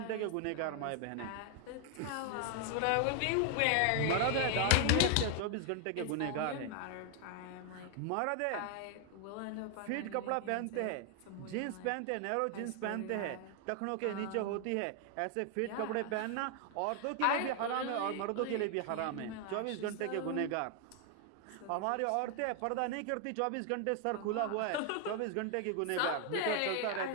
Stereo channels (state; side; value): different; both; correlation 0.00